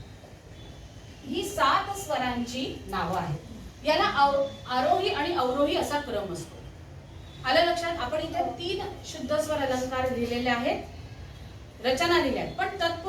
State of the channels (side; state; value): both; identical; correlation 1.00